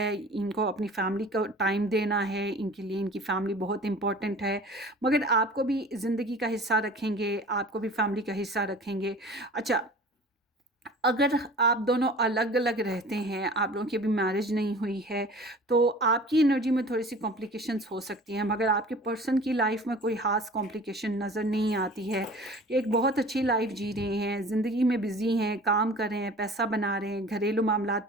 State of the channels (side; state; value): both; normal; correlation 0.43